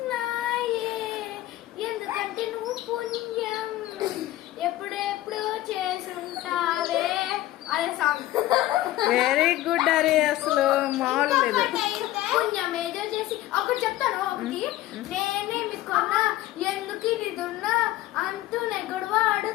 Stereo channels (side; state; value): right; quieter; 15.4 dB